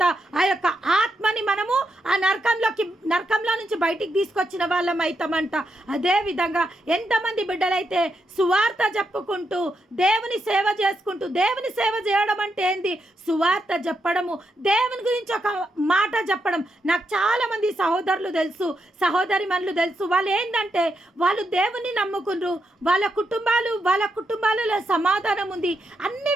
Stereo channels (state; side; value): normal; both; correlation 0.82